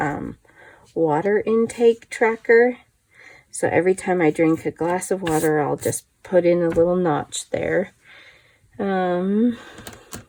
water intake tracker. So every time I drink a glass of water, I'll just put in a little notch there.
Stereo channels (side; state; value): both; identical; correlation 1.00